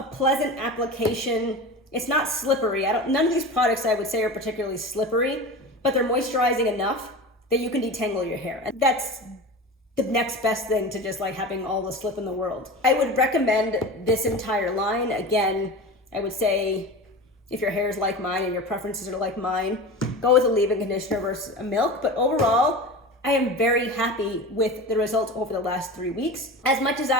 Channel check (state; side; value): normal; both; correlation 0.31